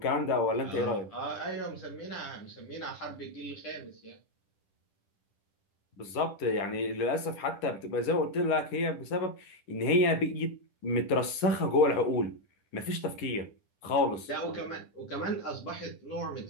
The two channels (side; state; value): right; late; 10 ms